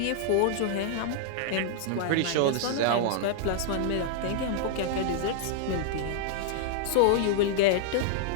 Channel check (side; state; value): both; different; correlation -0.01